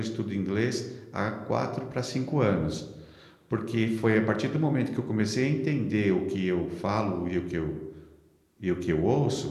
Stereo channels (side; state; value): both; identical; correlation 1.00